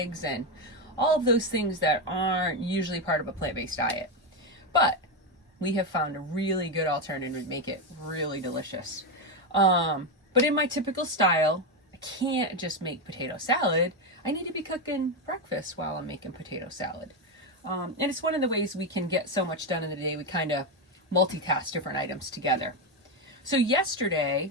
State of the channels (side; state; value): both; normal; correlation 0.09